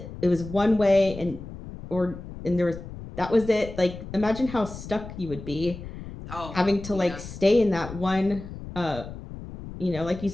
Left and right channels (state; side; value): noise; left; rumble, 12 dB below the sound